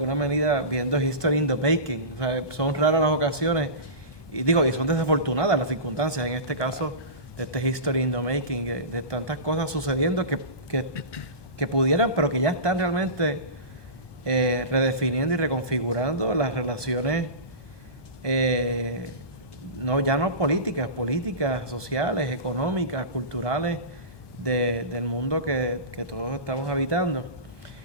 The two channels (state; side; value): late; right; 1.2 ms